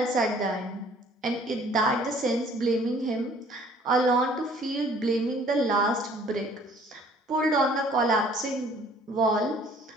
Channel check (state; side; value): normal; both; correlation 0.56